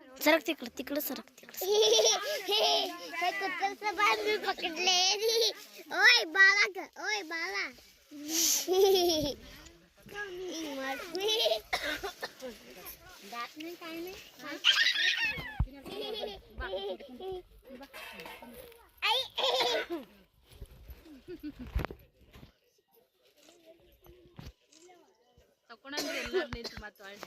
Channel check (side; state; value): both; identical; correlation 1.00